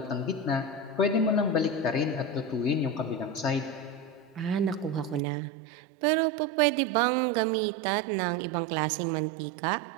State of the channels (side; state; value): left; drops out; at 5.2 s